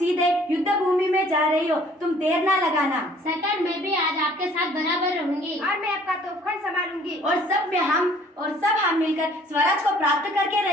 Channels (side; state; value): both; normal; correlation 0.57